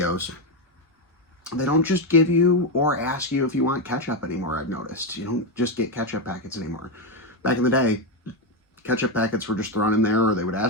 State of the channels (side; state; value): both; normal; correlation 0.07